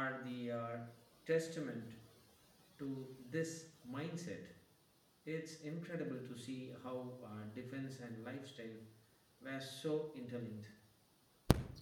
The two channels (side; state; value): both; identical; correlation 1.00